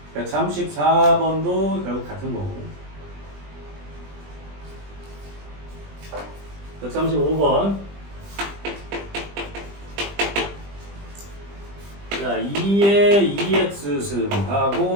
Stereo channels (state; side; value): late; left; 20 ms